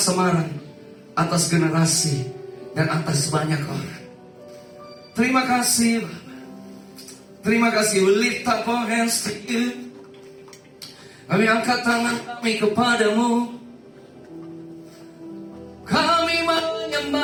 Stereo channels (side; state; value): both; identical; correlation 1.00